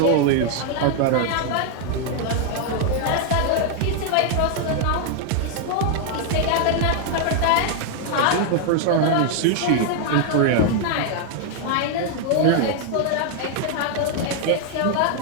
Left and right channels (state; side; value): different; both; correlation 0.00